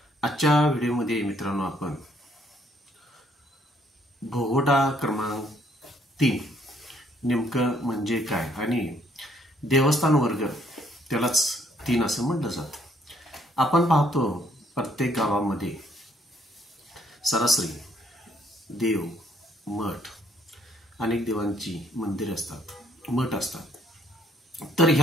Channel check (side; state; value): both; normal; correlation 0.67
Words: आजच्या व्हिडिओमध्ये मित्रांनो आपण भोगवटा क्रमांक 3 नेमकं म्हणजे काय आणि देवस्थान वर्ग त्यालाच 3 असं म्हटलं जातं. आपण पाहतो प्रत्येक गावामध्ये सरासरी देव, मठ, अनेक देवांची मंदिरे असतात, मठ असतात. तर